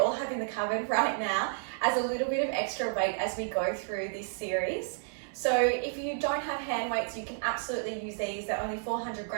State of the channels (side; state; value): left; silent; digital silence